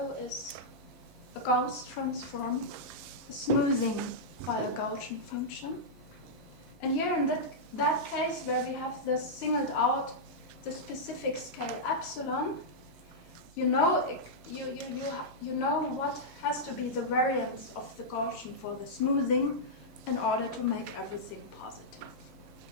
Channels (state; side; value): noise; right; hum, 25 dB below the sound